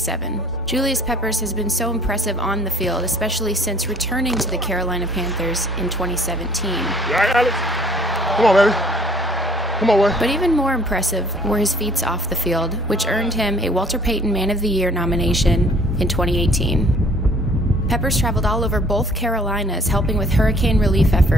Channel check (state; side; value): normal; both; correlation 0.56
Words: Julius Peppers has been so impressive on the field, especially since returning to the Carolina Panthers in 2017. All right, Alex. Come on, baby. Come on, boy. But even more impressive were his feats off the field, which earned him a Walter Payton Man of the Year nomination in 2018. Peppers traveled all over both Carolinas helping with hurricane relief